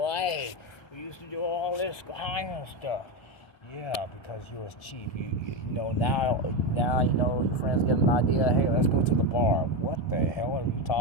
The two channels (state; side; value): late; right; 1.2 ms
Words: We used to do all this kind of stuff. Yeah, because you was cheap. Now your friends get an idea. Hey, let's go to the bar. What the hell are you